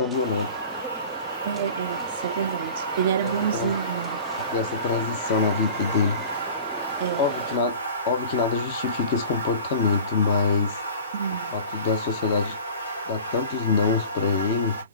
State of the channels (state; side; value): inverted; both; correlation -0.40